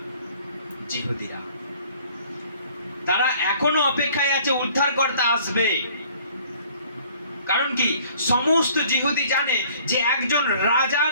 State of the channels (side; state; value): both; inverted; correlation -0.55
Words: জিহুদীরা। তারা এখনো অপেক্ষায় আছে উদ্ধারকর্তা আসবে। কারণ কি? সমস্ত জিহুদি জানে যে একজন